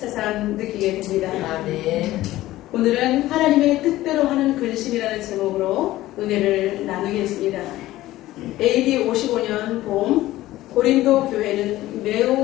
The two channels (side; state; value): right; quieter; 16.0 dB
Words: 느끼게 됩니다. 오늘은 하나님의 뜻대로 하는 근심이라는 제목으로 은혜를 나누겠습니다. AD 55년 봄 고린도 교회는